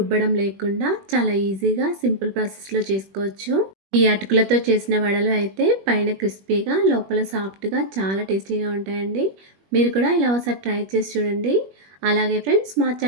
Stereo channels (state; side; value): late; left; 21 ms